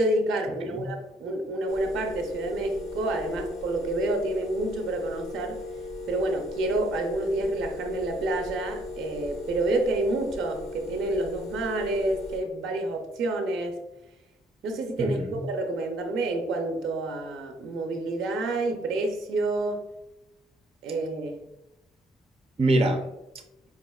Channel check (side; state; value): both; normal; correlation 0.65